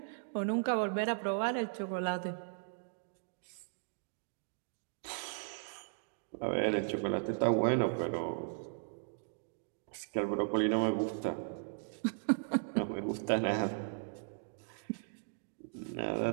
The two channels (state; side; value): silent; left; digital silence